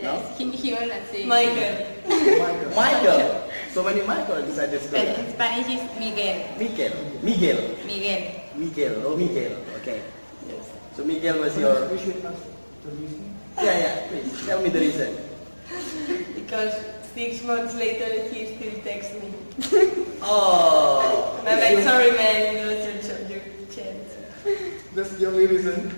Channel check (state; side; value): inverted; both; correlation -1.00